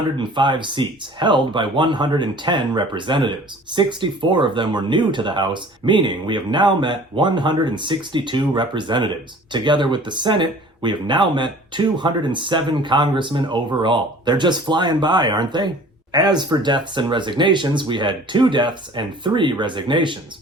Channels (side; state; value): both; normal; correlation 0.47